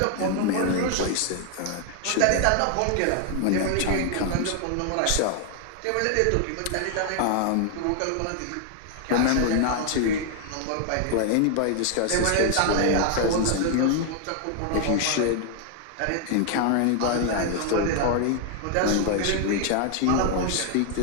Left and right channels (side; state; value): both; different; correlation 0.00